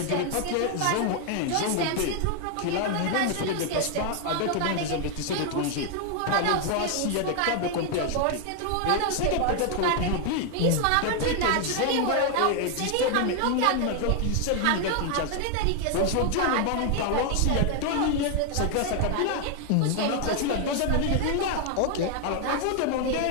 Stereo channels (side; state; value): both; different; correlation 0.01